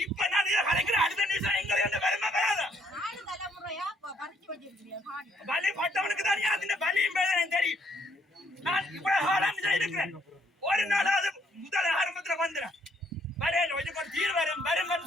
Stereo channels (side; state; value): both; normal; correlation 0.68